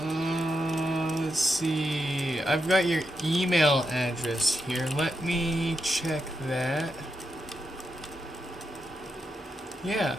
see. I've got your email address here. Let me check that. Yeah,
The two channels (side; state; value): both; normal; correlation 0.85